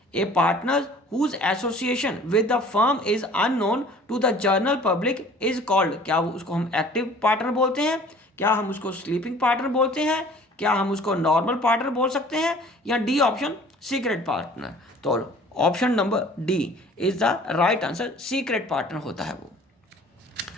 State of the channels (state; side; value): normal; both; correlation 0.50